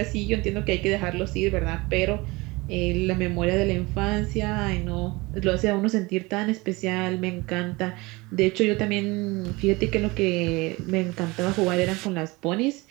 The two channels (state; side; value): quieter; left; 23.4 dB